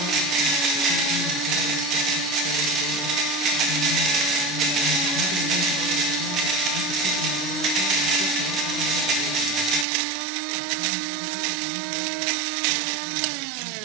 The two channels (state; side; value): drops out; left; at 9.9 s